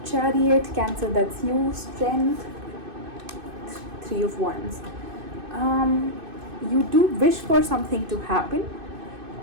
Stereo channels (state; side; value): late; left; 2.6 ms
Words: Chariot, Cancer, that's you. Strength, Three of Wands. You do wish for something to happen,